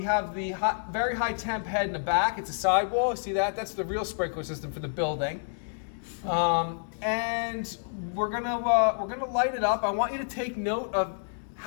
have the very high temp head in the back. It's a sidewall. See that? That's the real sprinkler system for the building. And we're gonna light it up. I want you to take note of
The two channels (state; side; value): silent; right; digital silence